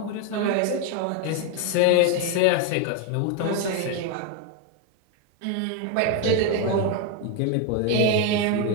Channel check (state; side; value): different; both; correlation 0.02